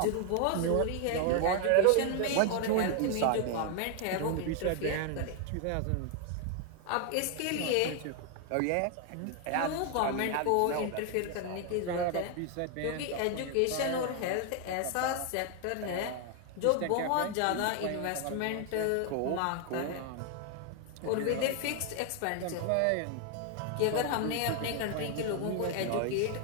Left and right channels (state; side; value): different; both; correlation 0.00